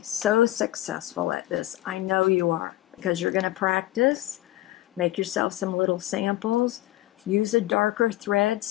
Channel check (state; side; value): quieter; right; 16.2 dB